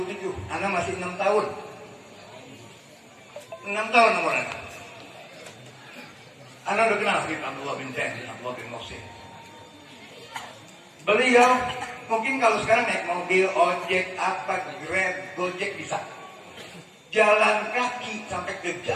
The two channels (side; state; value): both; identical; correlation 1.00